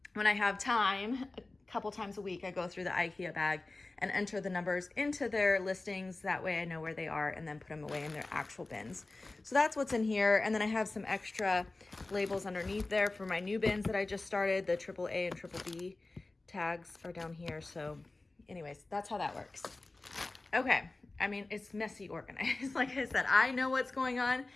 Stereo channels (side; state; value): right; quieter; 3.1 dB